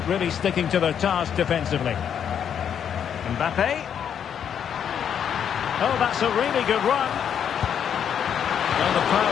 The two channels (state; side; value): quieter; right; 8.5 dB